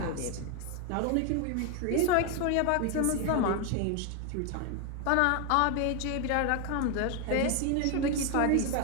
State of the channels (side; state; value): both; different; correlation 0.01